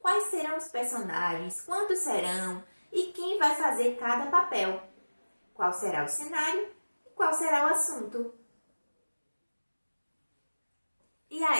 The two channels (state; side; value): inverted; both; correlation -1.00